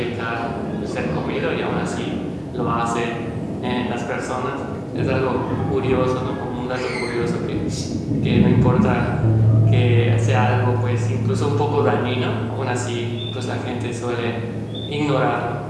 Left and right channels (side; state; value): both; identical; correlation 1.00